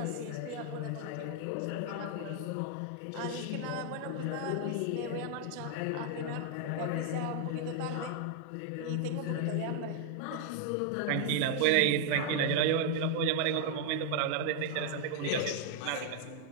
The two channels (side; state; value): both; different; correlation 0.00